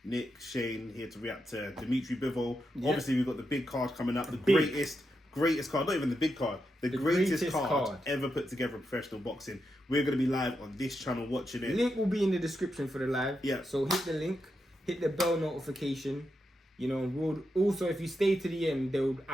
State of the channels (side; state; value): both; normal; correlation 0.85